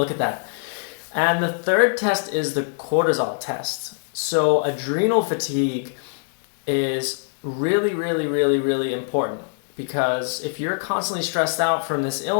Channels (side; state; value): right; silent; 60 dB below the other